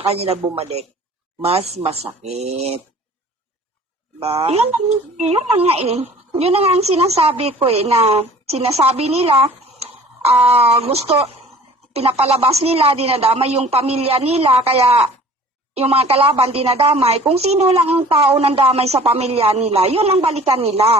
bumalik, mas masakit. Ba? yun na nga eh. Yun na nga ang sinasabi ko na sinasabi nila, gusto, pinapalabas nila, dinadamay yung pamilya nila, kaya yung mga kalaban dinadamay. Kung sino lang ang tao ng damay sa pamilya nila, yun ang balikan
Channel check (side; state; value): both; normal; correlation 0.48